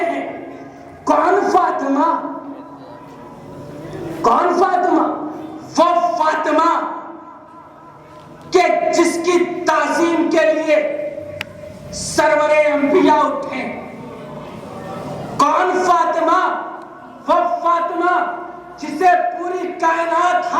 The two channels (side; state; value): both; identical; correlation 1.00